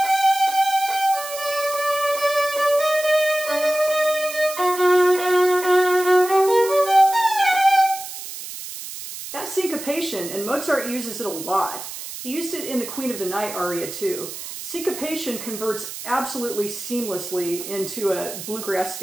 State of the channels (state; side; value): noise; right; hiss, 10 dB below the sound